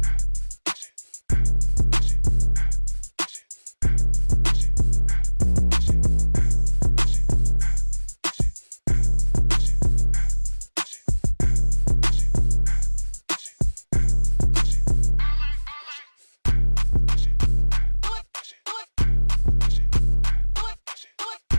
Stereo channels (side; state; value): both; inverted; correlation -1.00